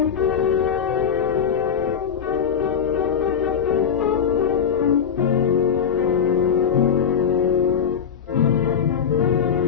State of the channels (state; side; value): quieter; right; 7.4 dB